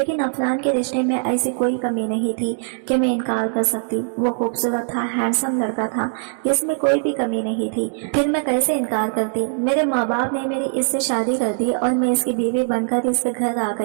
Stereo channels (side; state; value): left; silent; 60 dB below the other